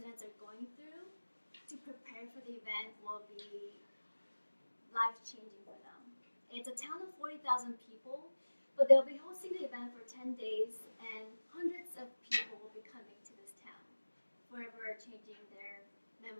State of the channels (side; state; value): both; inverted; correlation -1.00